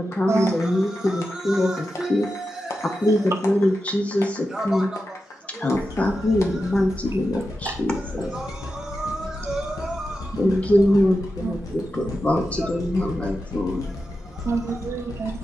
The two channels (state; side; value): normal; both; correlation 0.90